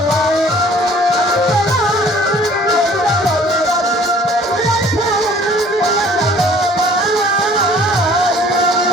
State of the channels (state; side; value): normal; both; correlation 0.53